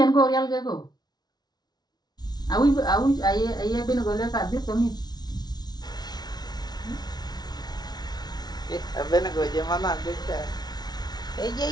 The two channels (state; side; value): late; right; 0.19 ms